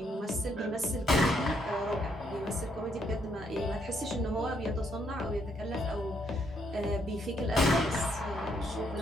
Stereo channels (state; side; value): normal; both; correlation 0.73